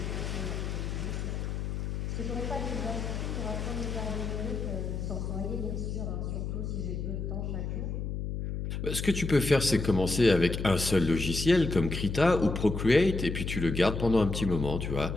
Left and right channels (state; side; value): noise; left; hum, 3 dB below the sound